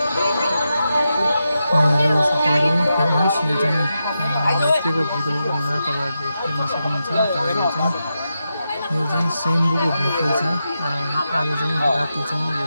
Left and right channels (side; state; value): both; inverted; correlation -0.88